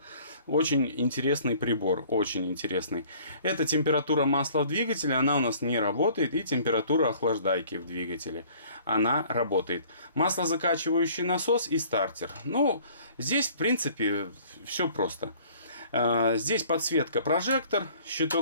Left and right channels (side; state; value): both; inverted; correlation -0.53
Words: Очень интересный прибор, очень интересный. Это температура масла в двигателе, она у нас не работает. И температура охлаждайки в двигателе, она работает. Маслозакачивающий насос и стартер. Ну, здесь в принципе все просто. Здесь подсветка, прожектор,